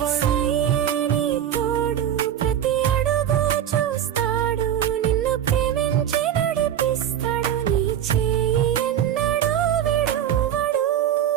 నీ తోడు ప్రతి అడుగు చూస్తాడు, నిన్ను ప్రేమించి నడిపిస్తాడు, నీ చేయి ఎన్నడూ విడువడు.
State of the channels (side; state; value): left; quieter; 10.3 dB